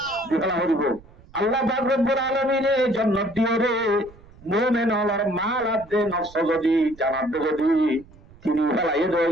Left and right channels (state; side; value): noise; right; rumble, 23 dB below the sound